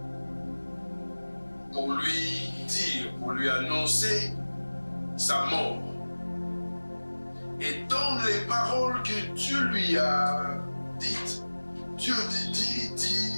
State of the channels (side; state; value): both; inverted; correlation -1.00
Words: pour lui dire, pour lui annoncer sa mort. Et dans les paroles que Dieu lui a dites, Dieu